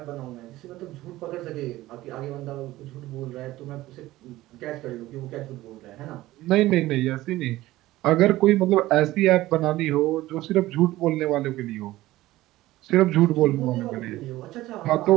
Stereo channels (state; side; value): quieter; left; 16.8 dB